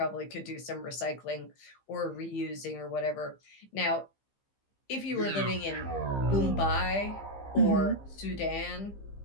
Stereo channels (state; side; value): late; right; 15 ms